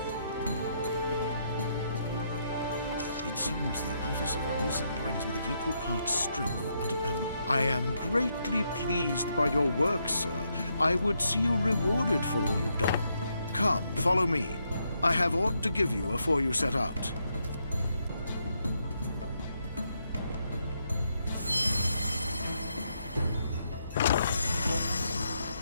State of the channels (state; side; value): inverted; both; correlation -0.78